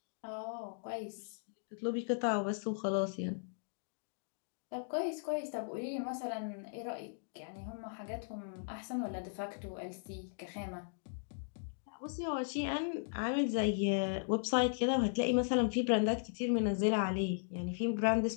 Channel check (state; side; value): silent; right; digital silence